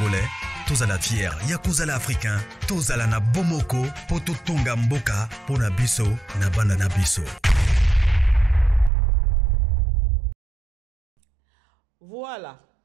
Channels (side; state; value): left; drops out; at 8.9 s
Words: Tous à la fière, Yakozala Africain. Tous à la na Bomoko, Poto Tonga Mboka, Pona Biso, na Banana Biso. Voilà.